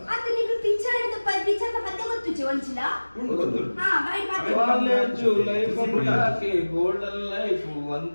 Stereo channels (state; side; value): inverted; both; correlation -1.00